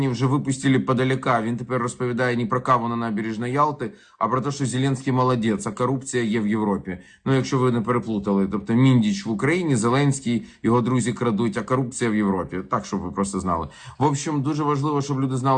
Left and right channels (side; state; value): both; identical; correlation 1.00